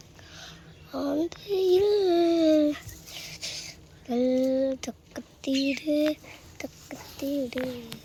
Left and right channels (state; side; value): identical; both; correlation 1.00